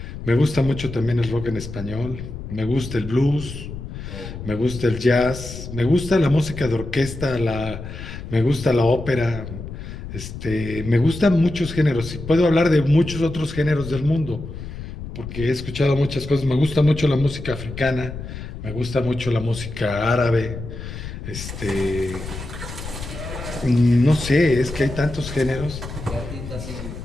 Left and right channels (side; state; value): left; noise; rumble, 10 dB below the sound